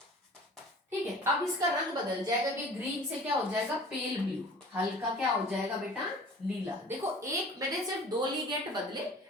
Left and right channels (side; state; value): both; normal; correlation 0.45